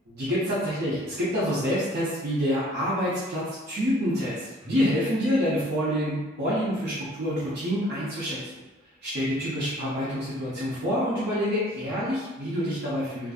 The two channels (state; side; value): normal; both; correlation 0.55